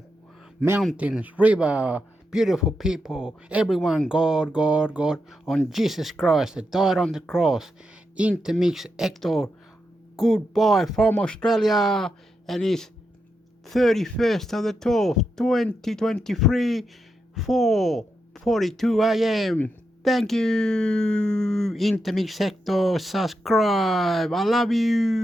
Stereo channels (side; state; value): both; normal; correlation 0.85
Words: mountains, river, beautiful people, everyone, God, God, God, on Jesus Christ that died on the cross. Intermix Hector, goodbye from Australia, and his 31st of the 12th, 2023, 4:42 a.m. Thank you, Intermix Sector. Subscribe. I love